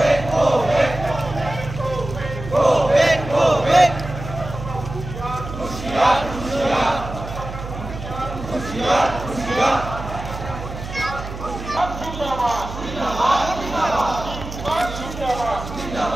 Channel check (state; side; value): noise; right; hum, 9 dB below the sound